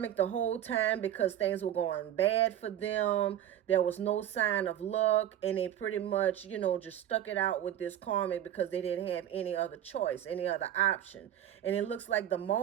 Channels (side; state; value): left; quieter; 11.2 dB